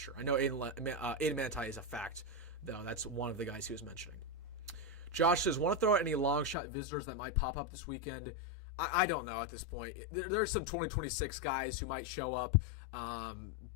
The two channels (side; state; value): right; drops out; at 6.6 s